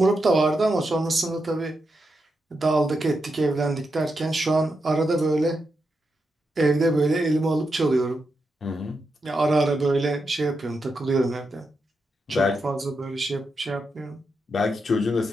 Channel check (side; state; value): both; normal; correlation 0.86